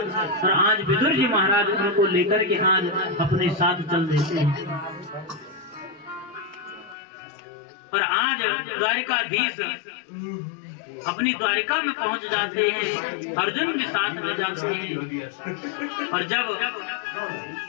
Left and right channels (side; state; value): right; drops out; at 7.0 s